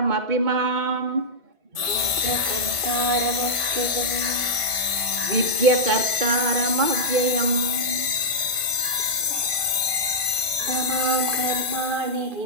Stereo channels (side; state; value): left; late; 1.7 ms